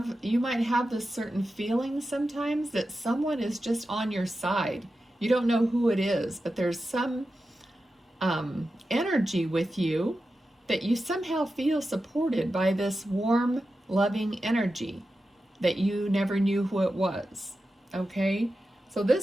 you might have this certain feeling sometimes that someone is just on your side. You don't know who it is, but there's some energy with you that you somehow feel supported by this warm, loving energy that you never knew who it was. Okay? So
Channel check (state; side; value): normal; both; correlation 0.91